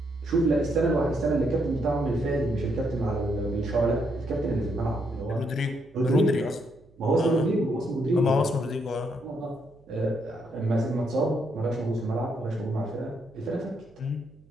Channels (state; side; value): noise; right; hum, 28 dB below the sound